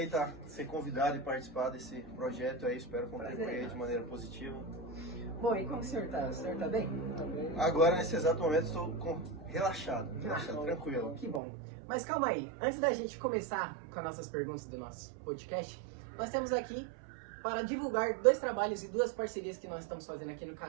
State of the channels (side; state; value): left; drops out; at 11.4 s